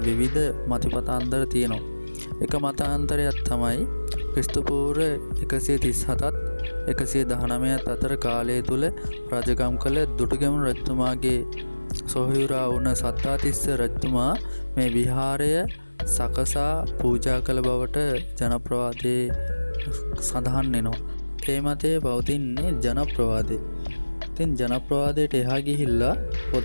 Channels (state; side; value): inverted; both; correlation -1.00